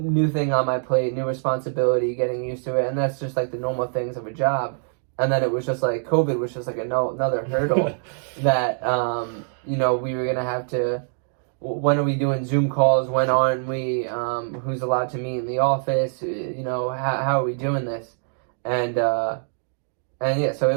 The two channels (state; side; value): silent; left; digital silence